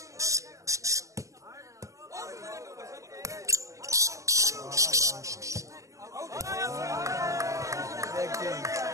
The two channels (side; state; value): left; late; 0.15 ms